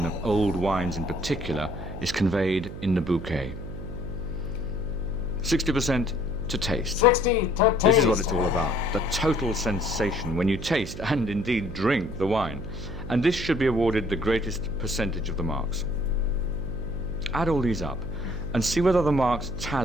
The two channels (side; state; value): right; noise; hum, 10 dB below the sound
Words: of old wines in particular is conveyed in the bouquet. 60% to taste. 60 to taste. This is what it's all about. The total sensation when you taste and indeed drink the wine. And this should be awarded the greatest percentage of the marks. Add all these up and see whether the marks